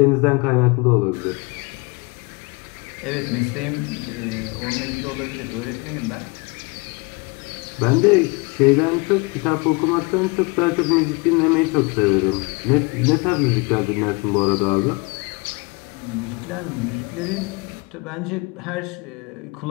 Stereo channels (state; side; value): quieter; right; 28.3 dB